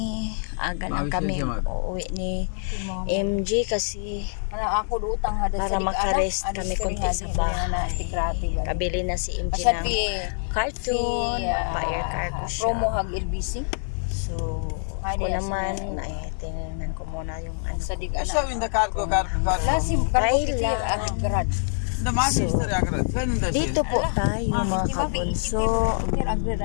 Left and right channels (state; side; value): silent; right; digital silence